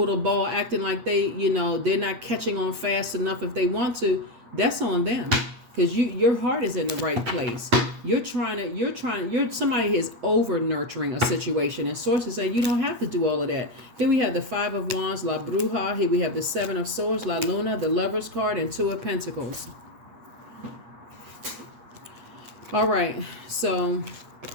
the ball acting like they're not catching on fast enough if they want to. That's on them, because your heart is in the right place. You're somebody is over nurturing a situation, and sources say you don't have to do all of that. Here we have the Five of Wands, La Bruja. Here we have the Seven of Swords, La Luna, the Lover's card, and Two of Pentacles. All right, so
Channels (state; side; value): late; left; 8.4 ms